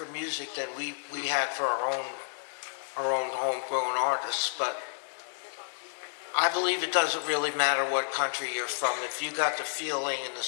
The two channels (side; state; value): right; silent; digital silence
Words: music than we had for our own homegrown artists. But I believe it doesn't really matter what country you're from. If you got the feeling and the